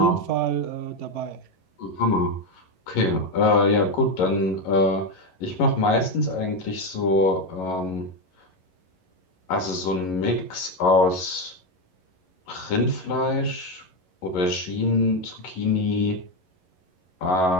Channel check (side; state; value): right; late; 11 ms